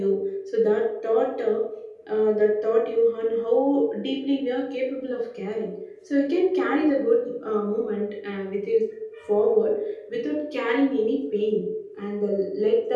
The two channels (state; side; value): identical; both; correlation 1.00